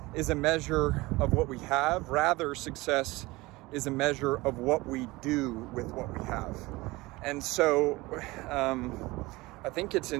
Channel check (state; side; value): quieter; left; 21.4 dB